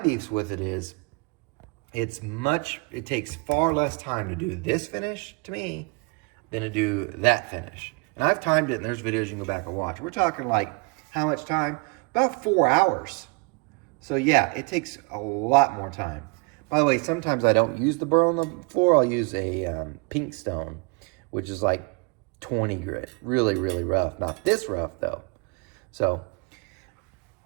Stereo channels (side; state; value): left; quieter; 30.9 dB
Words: with it is, it takes far less time to do this finish, to me, than to do that finish. And I've timed it, and there's videos you can go back and watch. We're talking like, how much time? About 4 hours. So yeah, it takes a lot more time. By the way, sometimes I don't use the Burr on the floor. I'll use a pink stone, which is like 20 grit. Really, really rough. Not this rough though. So